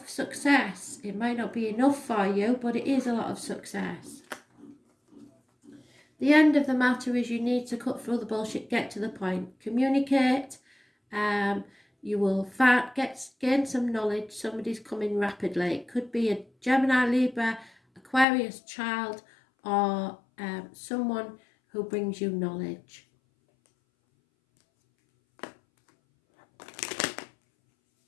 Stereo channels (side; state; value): right; drops out; at 18.2 s